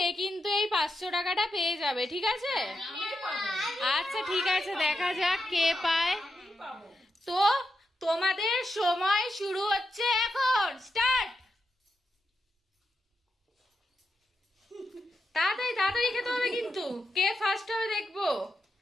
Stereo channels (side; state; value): both; normal; correlation 0.86